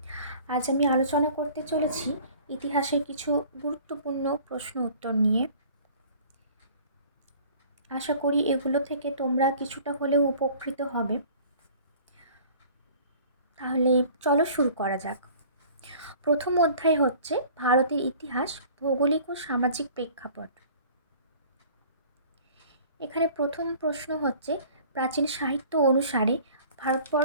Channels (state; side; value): inverted; both; correlation -0.49